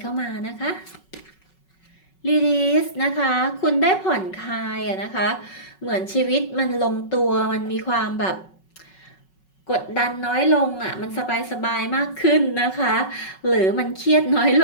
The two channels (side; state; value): right; late; 5.4 ms